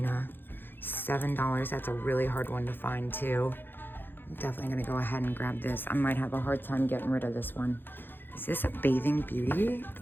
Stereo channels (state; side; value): late; right; 0.098 ms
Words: $7. That's a really hard one to find too. I'm definitely gonna go ahead and grab this. I might have a hard time getting rid of this one. Is this a Bathing Beauty?